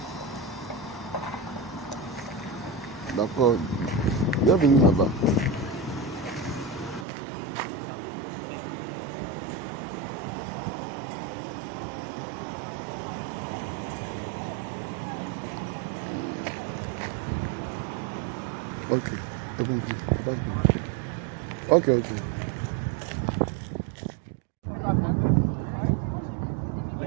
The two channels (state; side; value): drops out; left; at 7.1 s